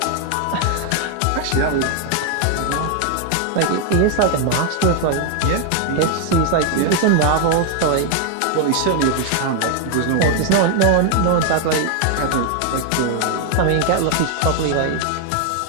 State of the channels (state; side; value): different; both; correlation 0.00